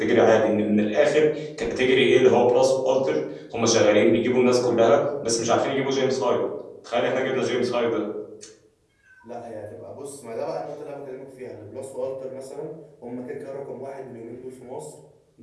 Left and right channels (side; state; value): both; identical; correlation 1.00